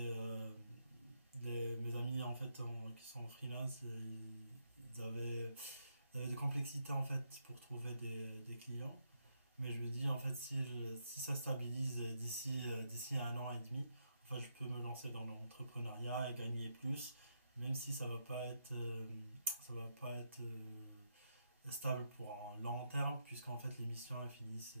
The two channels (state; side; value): inverted; both; correlation -0.80